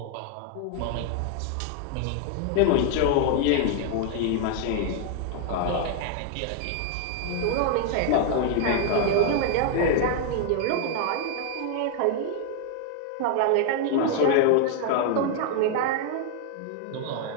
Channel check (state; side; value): different; both; correlation 0.00